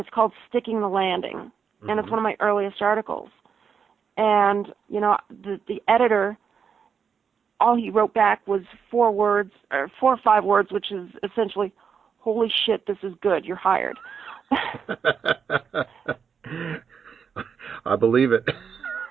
it's called Sticking the Landing. Mm-hmm. And it's one of my earliest articles. And, the editor, all he wrote back was 4 or 5 words, which is essentially, holy shit, this is good, you're hired. I believe it.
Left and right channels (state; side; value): quieter; left; 6.7 dB